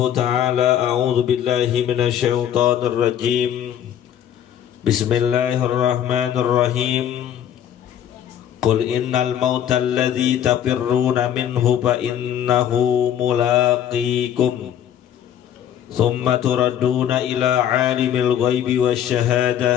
ta'ala a'udzu billahi minasy syaithanir rajim. Bismillahirrahmanirrahim. Qul innal mauta alladzi tafirruna minhu fa innahu mulaqikum thumma turadduna ila 'alimil ghaibi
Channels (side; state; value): right; quieter; 10.1 dB